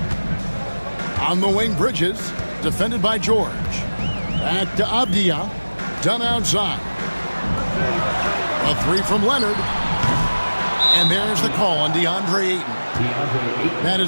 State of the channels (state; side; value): inverted; both; correlation -1.00